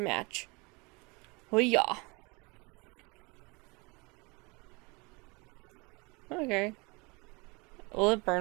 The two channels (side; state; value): left; quieter; 27.8 dB